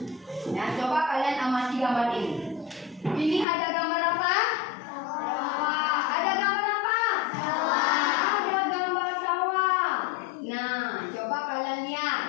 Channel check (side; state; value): right; drops out; at 3.5 s